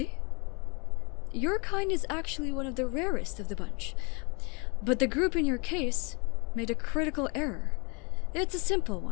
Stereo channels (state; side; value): quieter; right; 31.6 dB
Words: Your kind is actually one of the rarest of the bunch. But the group in your case made a critical error. It's a simple